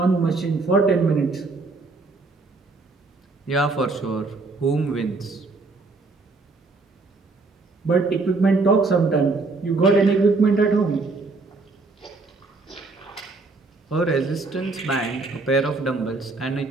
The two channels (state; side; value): quieter; left; 3.6 dB